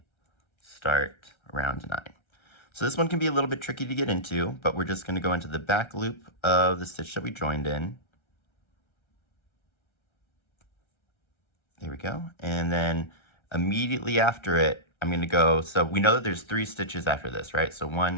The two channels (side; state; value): right; late; 1.3 ms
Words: start round 9. So this one can be a little bit tricky to get into, but we're just going to go into the back loop of the stitch that we joined in. There we go. And then immediately after it, I'm going to go, so we know that there's 3 stitches after this, right? So